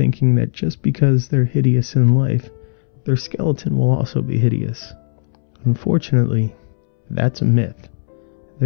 that just because they're hideous in life, their skeleton will also be hideous. Unfortunately, that's a myth.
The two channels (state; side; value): silent; right; 67 dB below the other